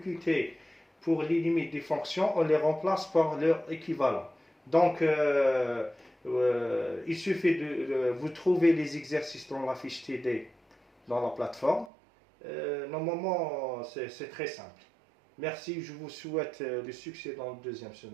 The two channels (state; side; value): drops out; left; at 11.9 s